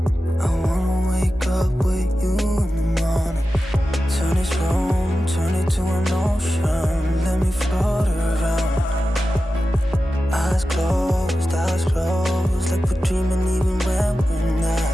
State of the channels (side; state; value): both; normal; correlation 0.93